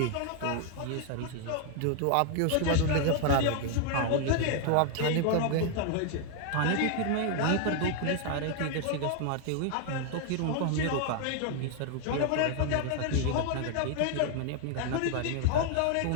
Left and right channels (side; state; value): both; different; correlation 0.00